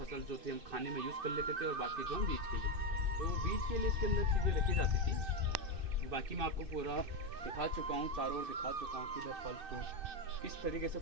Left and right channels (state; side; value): late; left; 2.6 ms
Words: जो थी हम खाने में यूज़ कर लेते थे और बाकी जो हम बीज के लिए, तो बीज के लिए इसके अंदर चीज़ें रखी जाती थी। बाकी मैं आपको पूरा दिखा चुका हूँ, चारों ओर दिखा चुका हूँ कि इधर फल फ्रूट किस तरीके से